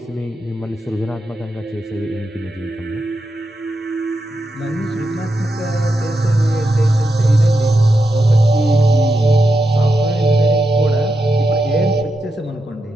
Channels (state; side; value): normal; both; correlation 0.86